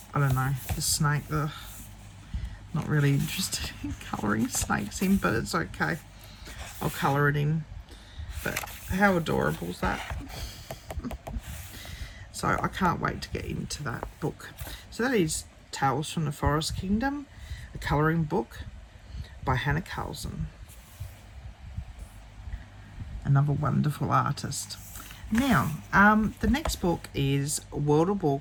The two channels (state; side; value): identical; both; correlation 1.00